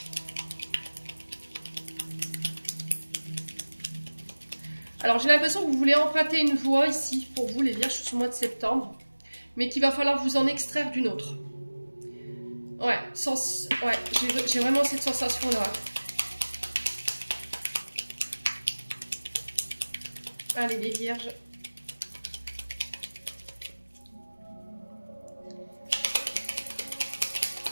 Alors j'ai l'impression que vous voulez emprunter une voie ici, pour vous les vierges, sur ce mois de septembre, mais qu'il va falloir vous en extraire d'une autre. Ouais, j'ai vraiment cette sensation-là. Allez, les vierges.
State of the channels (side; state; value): both; inverted; correlation -1.00